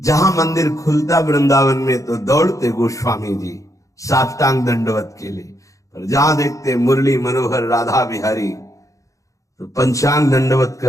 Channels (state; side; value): late; right; 0.16 ms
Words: मंदिर खुलता वृंदावन में तो दौड़ते गोस्वामी जी साष्टांग दंडवत के लिए, पर जहां देखते मुरली मनोहर राधा बिहारी तो पंचांग दंडवत